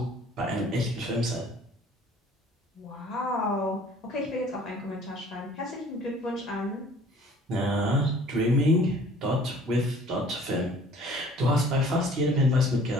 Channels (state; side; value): normal; both; correlation 0.52